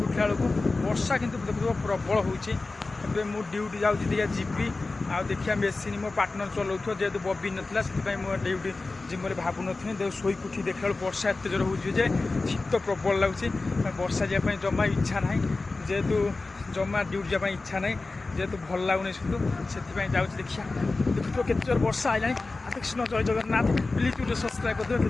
उठला बेलू वर्षा कि देखो प्रबल होबे मु ड्यूटी जाऊँगी जीवी आ देखिए मेसीन मो पार्टनर चलाऊ जेहेतु बबी नाला से मुझे ड्यूटी जिम भावु नी देख शोक उठी देखा वर्षा एत जोर हो शीत प्रबल लगुच वर्षा जावाई जमा इच्छा ना जेहेतु जमा ड्यूटी जावाई इच्छा ना जेहेतु भल लगुनि से जाऊँगी देखिए देखो केते जोर वर्षा आइलानी कृष्ण जय जगन्नाथ प्लीज गोटे सब्सक्राइब कर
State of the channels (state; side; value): quieter; right; 3.5 dB